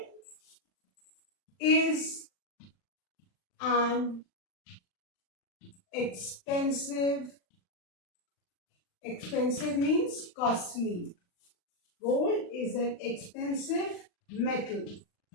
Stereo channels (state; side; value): late; right; 39 ms